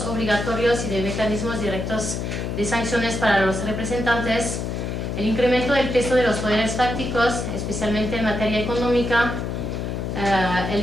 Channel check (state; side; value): noise; left; hum, 3 dB below the sound